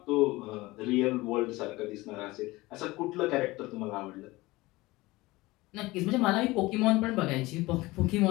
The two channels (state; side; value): quieter; right; 20.4 dB